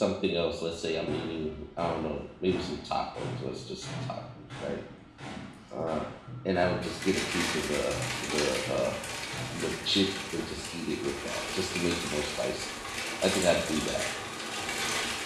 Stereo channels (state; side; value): identical; both; correlation 1.00